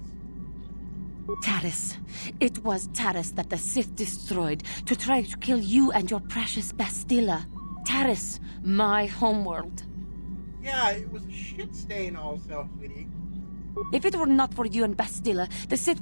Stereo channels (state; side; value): inverted; both; correlation -1.00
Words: Taris. It was Taris that the Sith destroyed to try to kill you and your precious Bastilla. Taris, my homeworld. Yeah, it was a shit stain also, sweetie. If it were not for you and Bastilla, the Sith